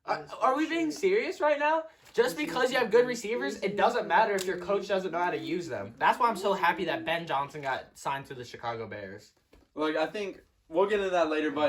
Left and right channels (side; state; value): both; identical; correlation 1.00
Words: Are we being serious right now? Just because you have good receivers, it doesn't matter if your coach doesn't know how to use them. That's why I'm so happy that Ben Johnson got signed to the Chicago Bears. Look, I think we'll get into that later,